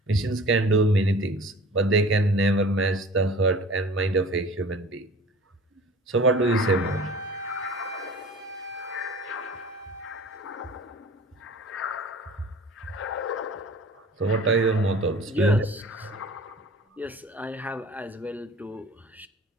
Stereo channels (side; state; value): both; normal; correlation 0.43